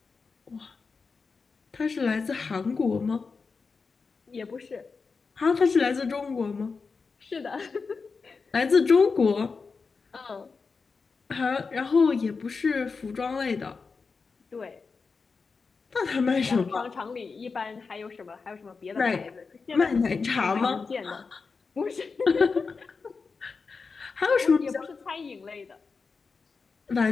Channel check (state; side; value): quieter; right; 4.8 dB